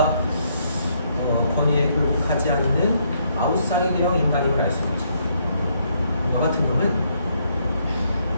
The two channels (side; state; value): both; inverted; correlation -0.72